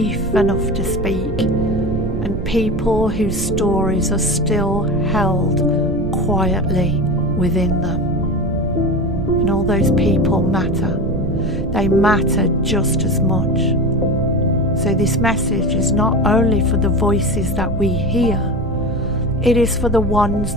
enough to speak. And people whose stories are still held quietly within them. And all those people matter. They matter just as much. So this message is not only for the voices that we hear, it is for the ones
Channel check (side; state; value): right; noise; rumble, 7 dB below the sound